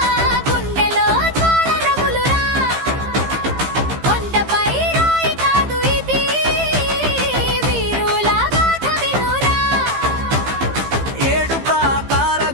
గుండెలో జ్వాల రగులురా, కొండపై రాయి కాదు ఇది, వీరుల గాథ వినురా. ఏడు ప్రాకార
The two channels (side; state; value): left; late; 15 ms